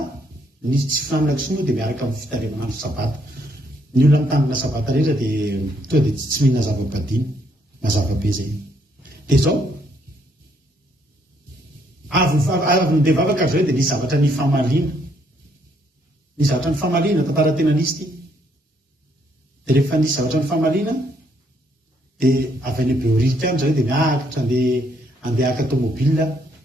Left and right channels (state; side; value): normal; both; correlation 0.71